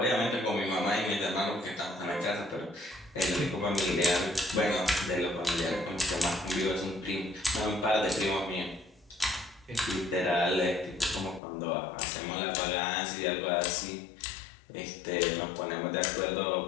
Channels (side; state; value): right; drops out; at 11.4 s